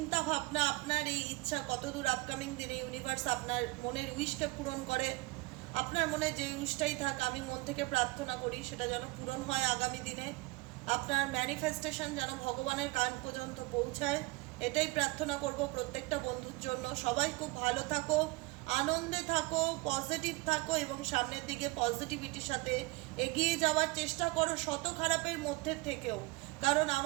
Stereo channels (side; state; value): left; quieter; 23.5 dB